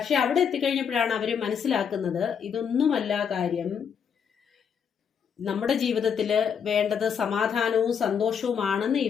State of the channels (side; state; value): right; quieter; 7.3 dB